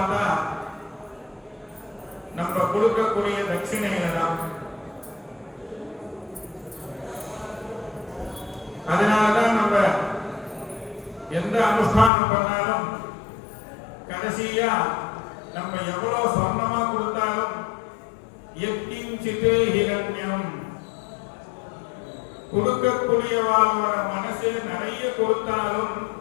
நம்ம கொடுக்கக்கூடிய தட்சிணையில தான். அதனாலதான் நம்ம எந்த அனுஷ்டானம் பண்ணாலும் கடைசியா நம்ம எவ்வளவு சொர்ணமா கொடுத்தாலும் எத்திஞ்சித்து ஹிரண்யம், கொடுக்கக்கூடியவாளோட மனசு நிறைய கொடுத்தாலும்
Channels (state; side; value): drops out; right; at 12.1 s